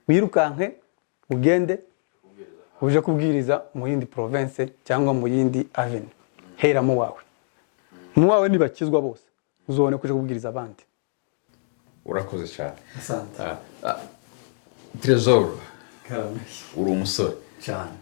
wirukanke ugende uje kubwiriza mu yindi province cyangwa mu yindi avenue. hera mu wawe. mu wawe nibakizwa bose, uzobone kuja kubwiriza abandi. urakoze cyane. Asante. Trezor, uri umusore cyane.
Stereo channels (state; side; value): silent; right; digital silence